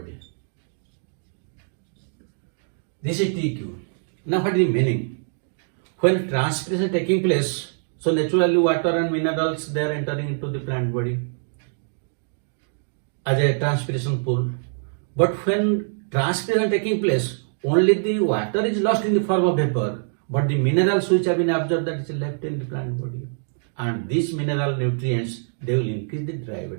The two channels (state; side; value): silent; left; digital silence